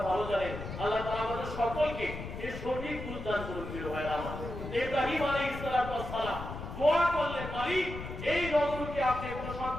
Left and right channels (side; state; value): left; noise; rumble, 8 dB below the sound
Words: ভালো জানেন। আল্লাহ তাআলা আমাদের সকলকে এর সঠিক বুঝ দান করুন। প্রিয় ভাইরা আমার, ইব্রাহিম আলাইহিস সালাম দোয়া করলেন, মালিক এই নগরকে আপনি